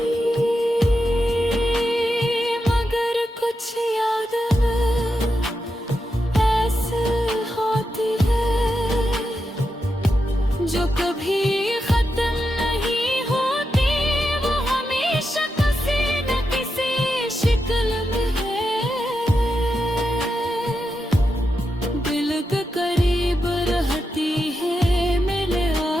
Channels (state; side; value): normal; both; correlation 0.87